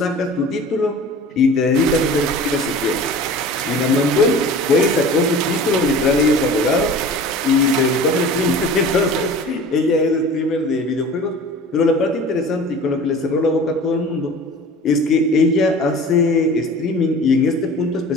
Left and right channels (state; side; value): normal; both; correlation 0.41